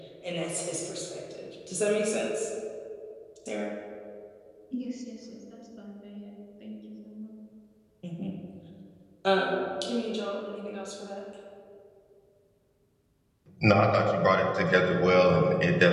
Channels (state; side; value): identical; both; correlation 1.00